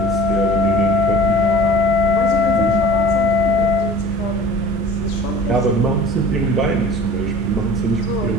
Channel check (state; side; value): normal; both; correlation 0.43